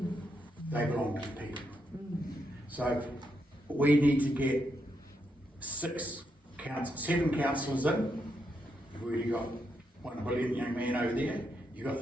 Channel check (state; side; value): normal; both; correlation 0.81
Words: They belong to the people. So we need to get 7 councillors in. We've already got one brilliant young man over there. You've